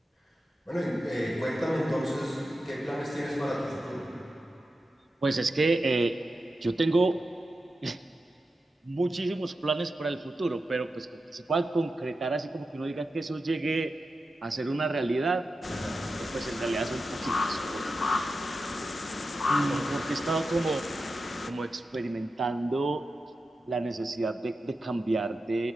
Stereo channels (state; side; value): normal; both; correlation 0.91